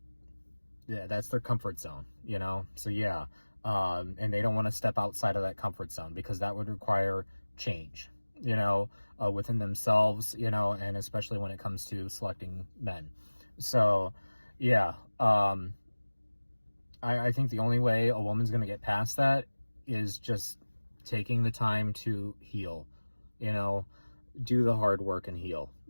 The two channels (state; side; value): inverted; both; correlation -1.00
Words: yeah, that's their comfort zone, So, yeah. And they don't want to step outside of that comfort zone because that would require change, within themselves, and especially when it comes to selecting men. So, yeah. I think the only way a woman's going to get past that is just taking the time to heal, you know, do the hard work and heal,